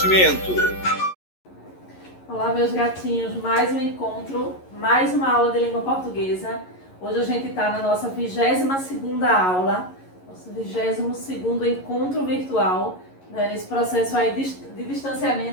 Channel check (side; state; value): right; late; 11 ms